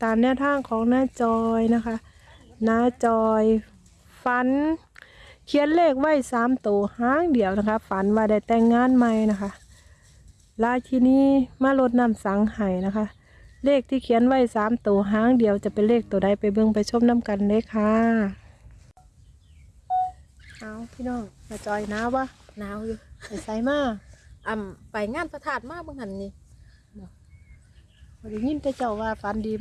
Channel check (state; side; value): identical; both; correlation 1.00